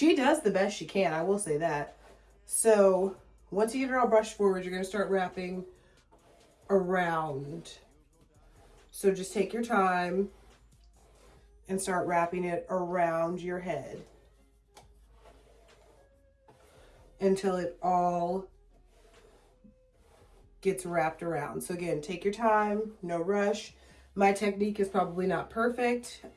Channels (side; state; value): both; identical; correlation 1.00